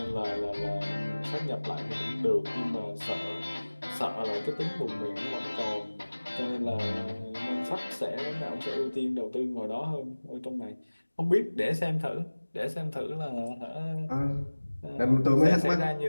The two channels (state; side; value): inverted; both; correlation -1.00